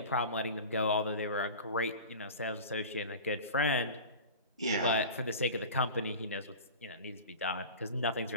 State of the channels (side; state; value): both; inverted; correlation -0.35